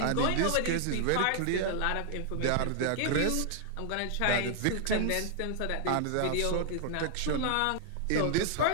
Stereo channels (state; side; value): different; both; correlation -0.01